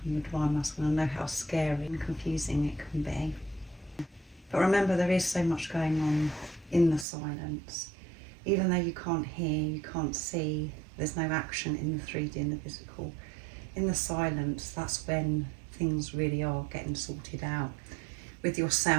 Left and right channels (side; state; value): left; drops out; at 7.1 s